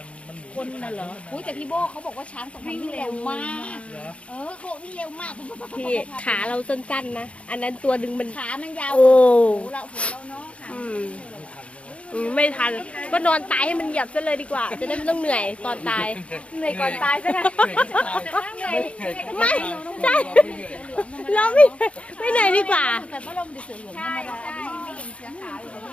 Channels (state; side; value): late; right; 0.062 ms